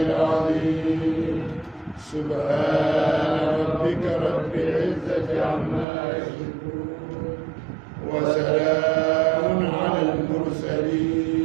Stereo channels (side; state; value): left; drops out; at 5.9 s